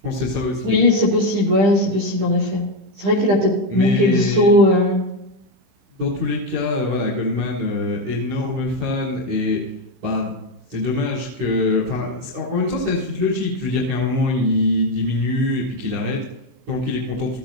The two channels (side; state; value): left; late; 15 ms